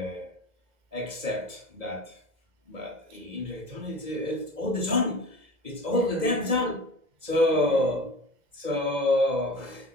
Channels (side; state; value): left; late; 2.0 ms